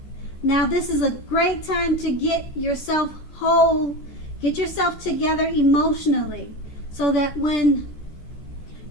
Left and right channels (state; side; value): late; right; 14 ms